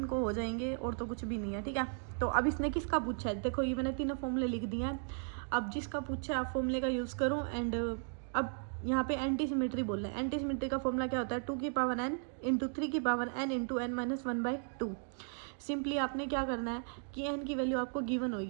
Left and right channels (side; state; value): left; silent; 54 dB below the other